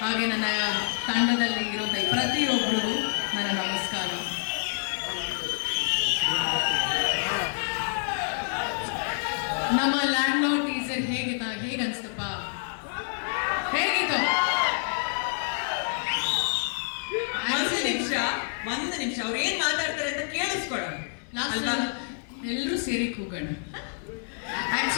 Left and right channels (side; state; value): right; silent; digital silence